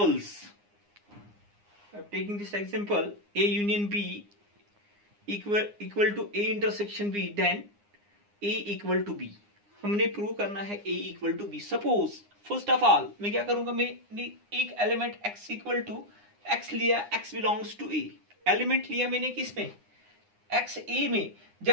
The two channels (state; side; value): late; left; 9.8 ms